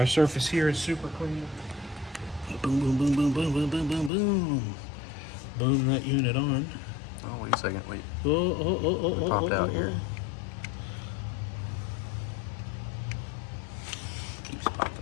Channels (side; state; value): right; drops out; at 4.1 s